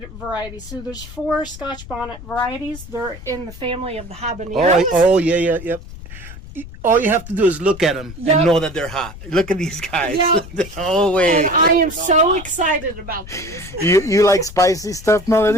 varieties. So there's 4 Scotch bonnet varieties. They're in the family of the habaneros. Oh yeah, yep. all you have to do is look at them Yep. and know that they're hot. Look at these guys. Yep. Oh, wait. And I am so excited about these. You like spicy stuff,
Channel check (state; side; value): noise; left; rumble, 15 dB below the sound